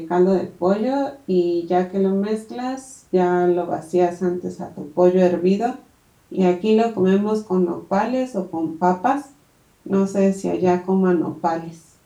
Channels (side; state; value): both; identical; correlation 1.00